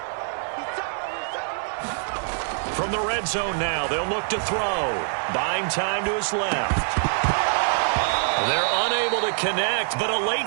From the red zone now, they'll look to throw. Buying time to his left. They're unable to connect, but a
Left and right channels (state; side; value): silent; left; digital silence